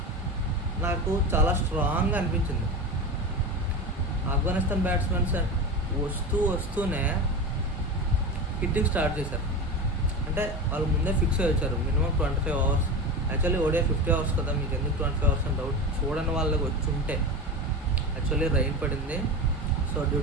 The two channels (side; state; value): both; normal; correlation 0.25